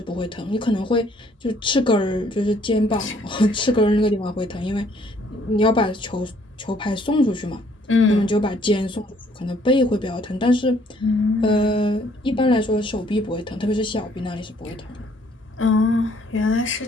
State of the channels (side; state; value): both; normal; correlation 0.63